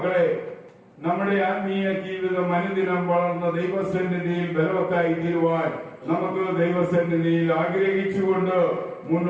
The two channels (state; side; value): identical; both; correlation 1.00